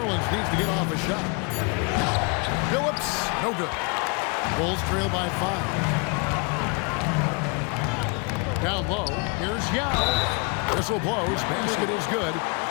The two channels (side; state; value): right; quieter; 32.6 dB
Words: needs to get off a shot. Phillips, no good. Bulls trail by 5. Down low, here's Yao. Whistle blows, basket is good.